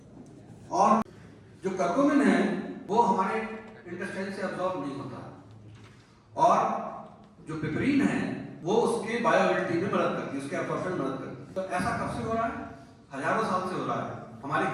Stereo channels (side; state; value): both; identical; correlation 1.00